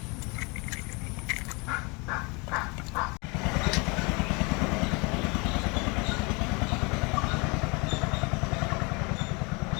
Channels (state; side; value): quieter; right; 29.0 dB